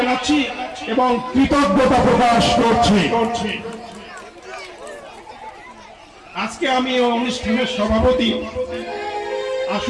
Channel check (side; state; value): both; identical; correlation 1.00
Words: এবং কৃতজ্ঞতা প্রকাশ করছি। আজকে আমি অনুষ্ঠানের সভাপতি,